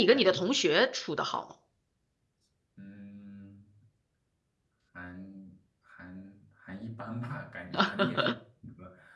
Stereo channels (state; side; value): identical; both; correlation 1.00